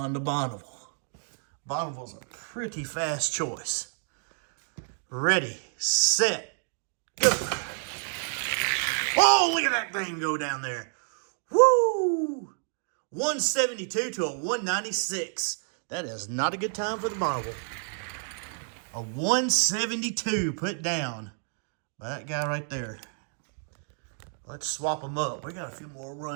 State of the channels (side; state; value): left; silent; 58 dB below the other